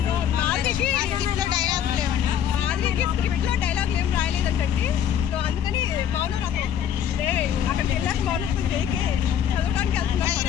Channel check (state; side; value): quieter; right; 9.4 dB